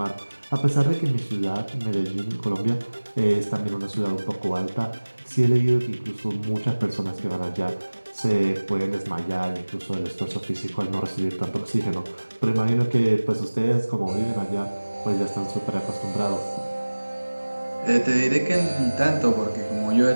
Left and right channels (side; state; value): both; inverted; correlation -1.00